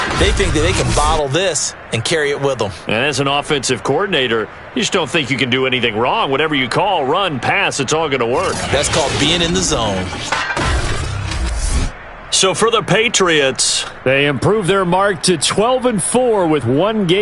They think that they can bottle this and carry it with them. And as an offensive coordinator, you just don't think you can do anything wrong. Whatever you call, run, pass, it's all going to work. That's called being in the zone. So for the Patriots, they improve their mark to 12-4 with one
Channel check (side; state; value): both; identical; correlation 1.00